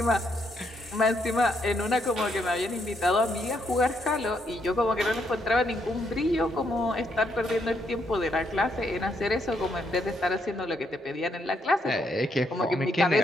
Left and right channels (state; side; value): normal; both; correlation 0.75